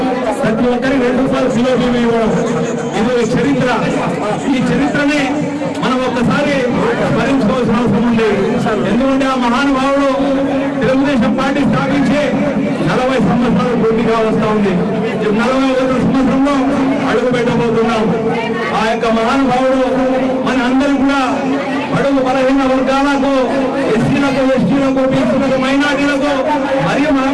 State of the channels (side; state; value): both; identical; correlation 1.00